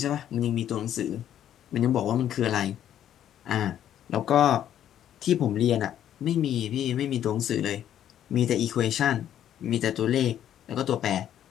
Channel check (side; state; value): right; quieter; 10.7 dB